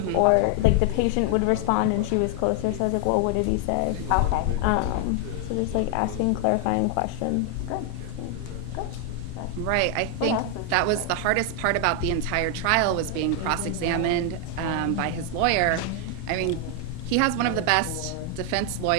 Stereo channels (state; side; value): different; both; correlation 0.00